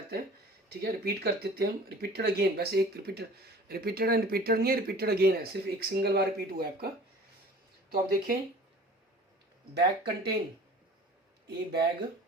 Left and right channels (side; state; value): both; normal; correlation 0.45